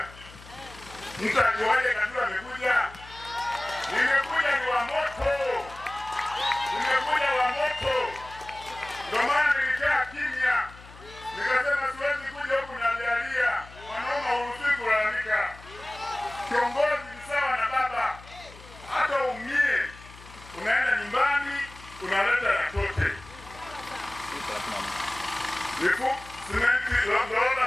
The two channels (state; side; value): noise; left; hum, 19 dB below the sound